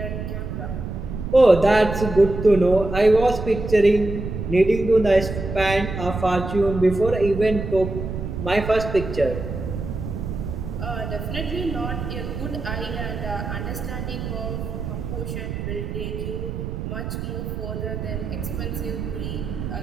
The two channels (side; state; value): right; noise; rumble, 6 dB below the sound